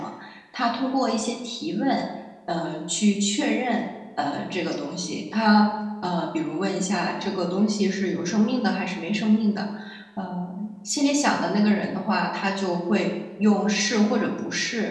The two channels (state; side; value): identical; both; correlation 1.00